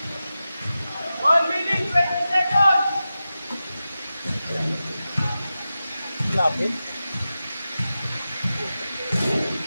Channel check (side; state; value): both; inverted; correlation -0.93